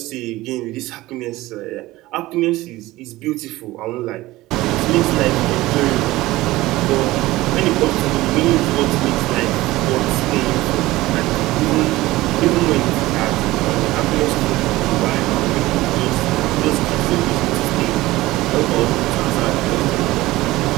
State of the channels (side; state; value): left; quieter; 18.1 dB